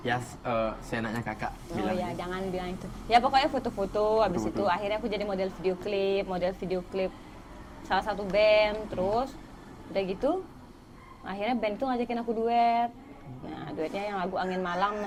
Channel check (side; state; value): both; identical; correlation 1.00